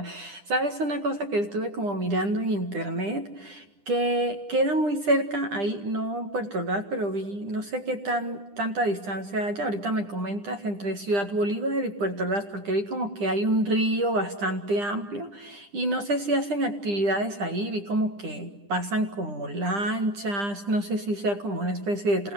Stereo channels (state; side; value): late; left; 10 ms